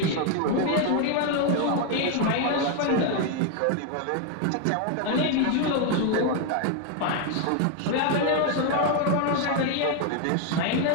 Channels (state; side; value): different; both; correlation 0.01